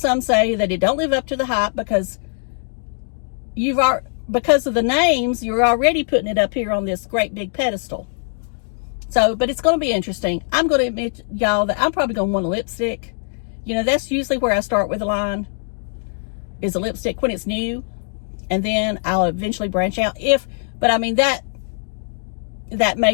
say that it don't live up to the hype because because of the names, you're already putting it up here on this great big pedestal. So, but it's going to be interesting. I'm going to admit, y'all, that I'm probably going to want a lipstick. You know, that's usually where I start with a line, is a lipstick when it's new. And then I'll eventually branch out. But I mean, that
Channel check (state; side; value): silent; right; digital silence